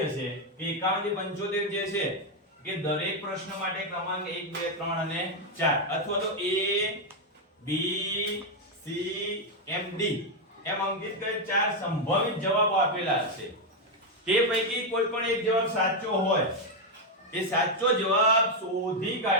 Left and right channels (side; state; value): both; normal; correlation 0.03